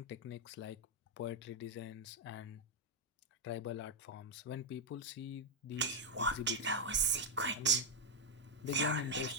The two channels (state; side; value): normal; both; correlation 0.00